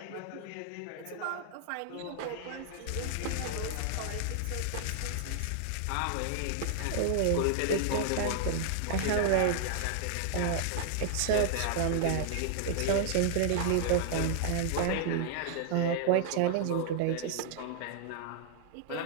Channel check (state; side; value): different; both; correlation -0.01